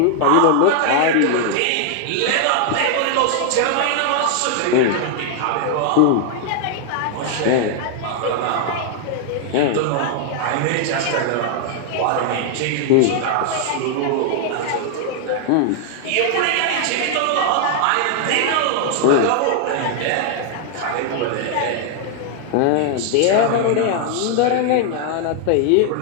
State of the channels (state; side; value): different; both; correlation 0.00